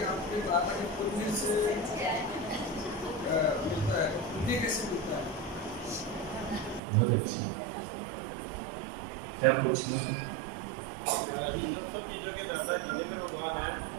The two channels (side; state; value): left; drops out; at 6.8 s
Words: बहुत अच्छा, क्या पूछना? सब चीजों के दाता जितेंद्र भगवान है,